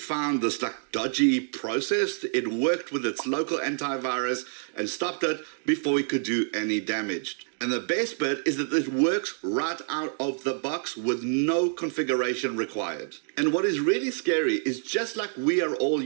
this dodgy process, it worked with its local antivirus and stopped it before it could do any damage. And the best bit is that it works right out of the box with no configuration required. And what is really scary is just like we are all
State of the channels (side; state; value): left; silent; 60 dB below the other